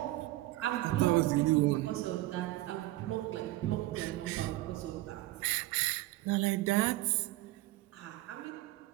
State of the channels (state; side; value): quieter; left; 17.5 dB